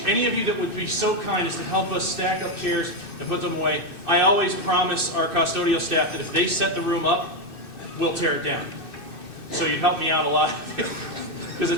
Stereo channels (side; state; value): right; late; 2.6 ms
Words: any of you that would be so kind as to help us stack up chairs and put them away, I always promise our custodial staff that if they set the room up, we'll tear it down. So you'd help me out a lot, because